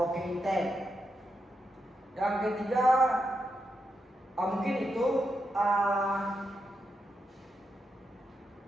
ke intake. Yang ketiga mungkin itu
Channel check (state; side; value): normal; both; correlation 0.85